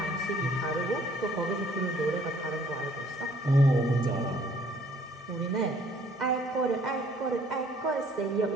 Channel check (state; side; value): normal; both; correlation 0.60